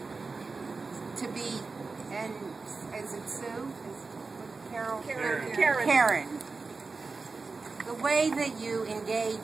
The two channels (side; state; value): left; quieter; 4.2 dB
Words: to be, and is it Sue? Karen. The way that you